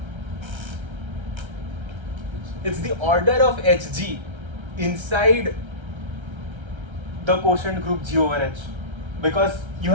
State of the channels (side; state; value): left; late; 1.3 ms